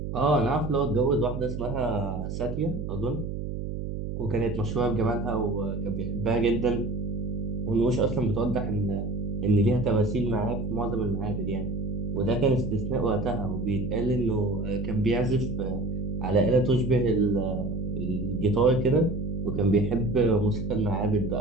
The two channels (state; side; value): noise; right; hum, 5 dB below the sound